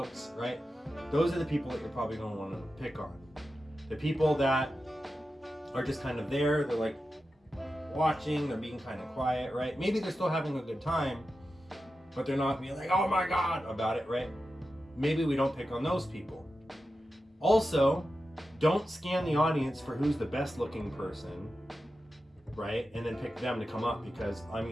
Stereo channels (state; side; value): normal; both; correlation 0.91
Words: right? Those are the people that you're probably going to want to pick on. The people that are just kind of there, they're like watching, they're being kind of quiet, right? Maybe they're still having a good time, but they're not being like, oh my God, about it, right? Maybe we don't pick on those people. Also, don't scan the audience for who's the best looking person, right? And then pick them to come up because I'm